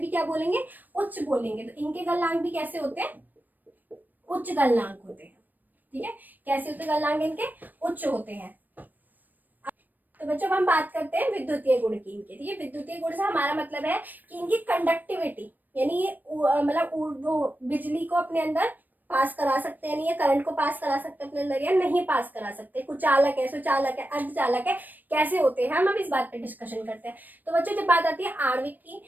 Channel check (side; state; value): left; late; 0.088 ms